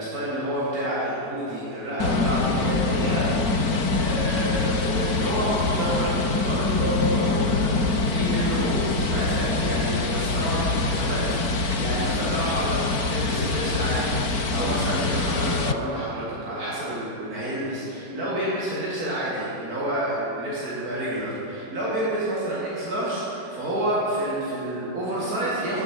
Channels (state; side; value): late; left; 4.4 ms